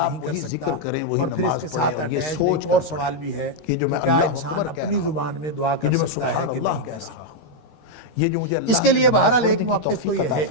نہیں کر وہی سکتا. ذکر کریں، وہی اور پھر اس نماز کے پڑھیں، ساتھ اور یہ attached سوچ ایک اور کر سوال بھی ہے کہ جو میں کیا اللہ انسان اکبر کہہ اپنی رہا ہوں، زبان میں دعا کر جو میں سکتا ہے سبحان کہ اللہ نہیں کہہ کر رہا سکتا. ہوں، یہ جو مجھے اللہ اس کے لیے بہرحال ایک موقف تو توفیق یہ عطا ہے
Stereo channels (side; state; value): right; late; 13 ms